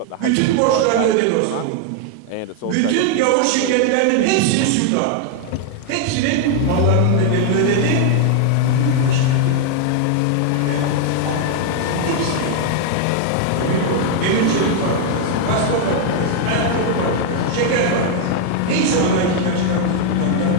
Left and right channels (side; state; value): both; different; correlation 0.00